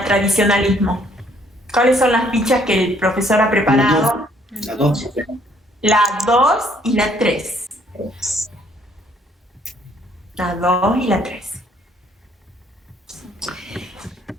tradicionalismo. ¿Cuáles son las fichas que el profesor ha preparado? La 2. La 2 y la 3. La 2 y la 3.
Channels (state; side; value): normal; both; correlation 0.64